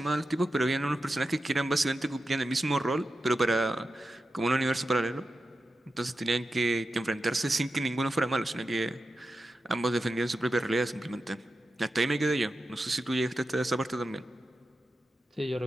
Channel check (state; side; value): normal; both; correlation 0.91